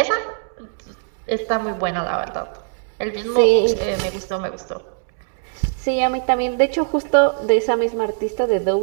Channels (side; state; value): left; silent; digital silence